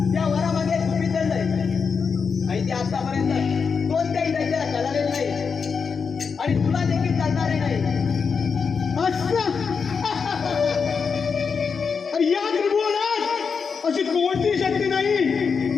त्या वरामागे तुम्ही चाललंय आणि ते आतापर्यंत कोणत्याही दैत्याला कळालेलं नाही आणि तुला देखील चालणारे नाही. या त्रिभुवनात अशी कोणती शक्ती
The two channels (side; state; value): right; quieter; 5.7 dB